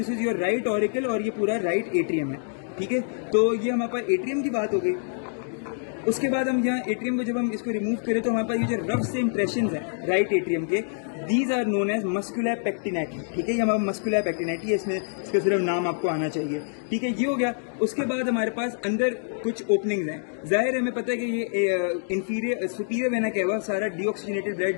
is your right auricle और ये पूरा राइट एट्रियम है, ठीक है। तो ये हमारे पास एट्रियम की बात हो गई। उसके बाद हम यहाँ एट्रियम को जब हम इसको रिमूव करें तो हमारे पास ये जो रफ से इंप्रेशन है राइट एट्रियम के, these are known as muscular pectinati, ठीक है। ये हमारा मस्कुलर पेक्टिनेटी है, इसमें इसका सिर्फ नाम आपको आना चाहिए, ठीक है। ये हो गया। उसके बाद हमारे पास अंदर कुछ ओपनिंग्स हैं। जाहिर है, हमें पता है कि ये इंफीरियर सुपीरियर वेना कैवा सारा डीऑक्सीजनेटेड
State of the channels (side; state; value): right; silent; digital silence